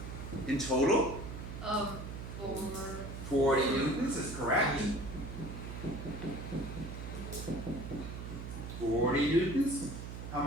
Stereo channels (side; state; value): right; noise; hum, 8 dB below the sound